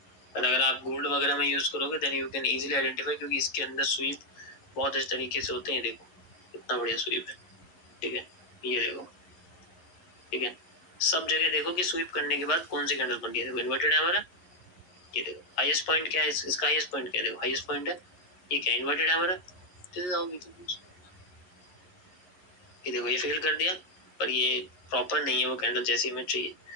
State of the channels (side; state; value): right; late; 11 ms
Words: पर अगर आप गोल्ड वगैरह में यूज करोगे then you can easily identify, क्योंकि इसके अंदर स्वीप बहुत इस तरीके से होते हैं, देखो इतना बढ़िया स्वीप है, ठीक है, ये देखो, ठीक है, सब जगह देखो कि स्वीप करने के बाद कौन सी कैंडल बन गई है। देखो इन्वर्टेड हैमर है, ये देखो हाईएस्ट पॉइंट क्या है, इसका हाईएस्ट पॉइंट क्या है, देखो हाईएस्ट पॉइंट है, ये क्या इन्वर्टेड हैमर है। This is how we can use. ये देखो ये फेल कर दिया, पर ये प्रॉपर नहीं है वो कैंडल जैसी हमें चाहिए।